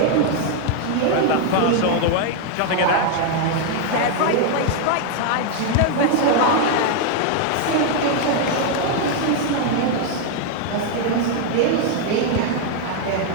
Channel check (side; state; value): both; different; correlation 0.00